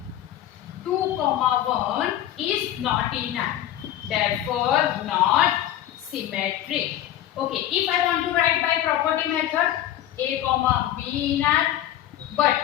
2, 1 is not in R, therefore not symmetric. Okay, if I want to write by property method, A, B in R, but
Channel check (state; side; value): quieter; right; 12.2 dB